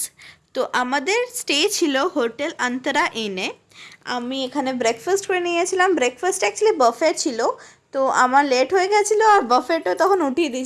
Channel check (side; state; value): both; identical; correlation 1.00